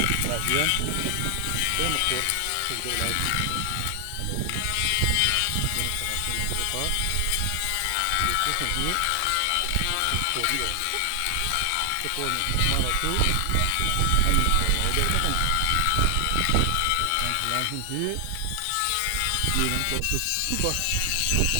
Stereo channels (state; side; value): different; both; correlation 0.00